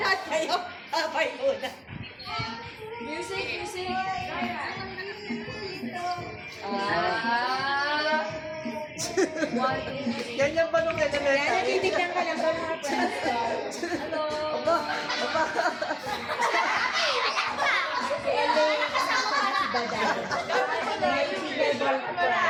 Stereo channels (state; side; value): identical; both; correlation 1.00